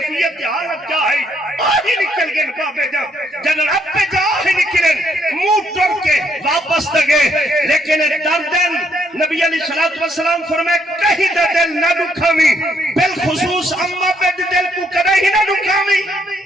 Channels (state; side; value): normal; both; correlation 0.72